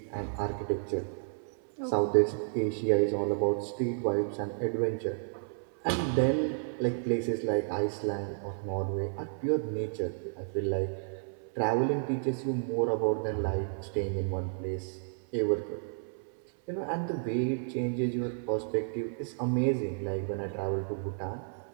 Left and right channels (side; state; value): left; silent; 57 dB below the other